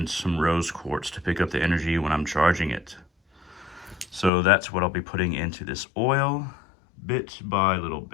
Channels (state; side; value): drops out; right; at 4.3 s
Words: some rose quartz to pick up the energy when I'm charging it. So that's what I'll be putting into this oil, bit by little